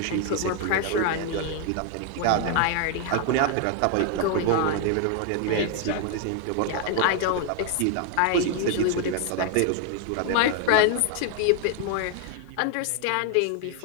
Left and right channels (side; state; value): both; different; correlation 0.00